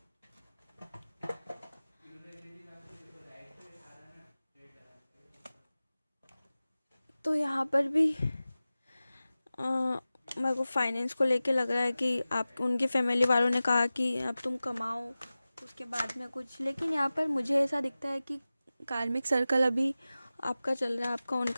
तो यहाँ पर भी मेरे को फाइनेंस को लेके लग रहा है कि आप उनकी फैमिली वालों ने कहा कि अब तुम कमाओ उसके बाद में कुछ, लेकिन यहाँ पर मुझे ऐसा दिखता है कि कार्मिक सर्कल अभी आपका चल रहा है, आपका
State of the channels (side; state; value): both; inverted; correlation -0.96